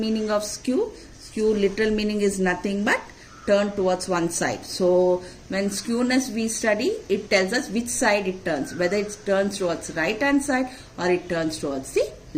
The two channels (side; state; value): both; identical; correlation 1.00